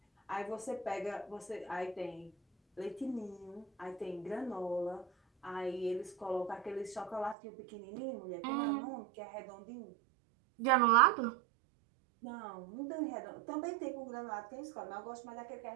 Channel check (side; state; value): left; drops out; at 7.4 s